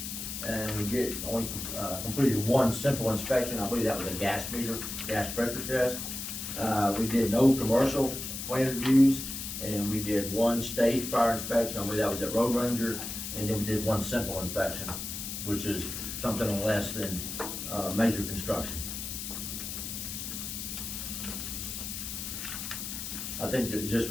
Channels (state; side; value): noise; left; hiss, 6 dB below the sound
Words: and we only completed 1 simple inspection. I believe that was a gas meter, gas pressure test. We did no commercial plan reviews, and we did 1 stage fire inspection. I believe that was at Road Ranger, and then we did 1 simple inspection, which is something less than, major construction. I think it's just